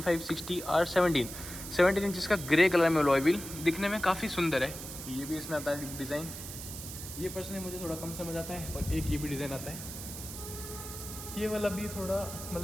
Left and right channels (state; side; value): noise; right; hiss, 10 dB below the sound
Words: R17 इंच का ग्रे कलर में अलॉय व्हील, दिखने में काफ़ी सुंदर है। ये भी इसमें आता है डिज़ाइन, ये पर्सनली मुझे थोड़ा कम समझ आता है। और एक ये भी डिज़ाइन आता है, ये वाला भी थोड़ा